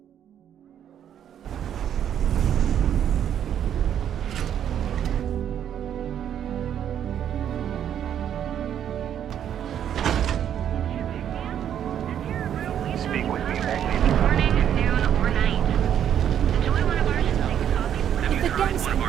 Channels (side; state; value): left; quieter; 9.6 dB